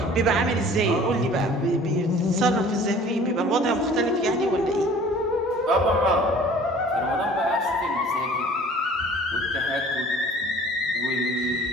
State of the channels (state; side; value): normal; both; correlation 0.49